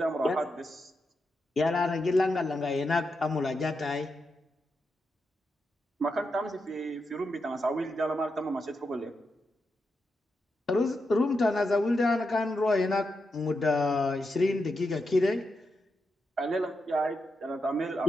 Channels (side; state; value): both; normal; correlation 0.86